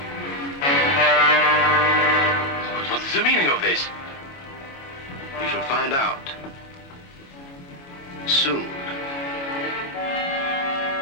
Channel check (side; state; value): right; late; 22 ms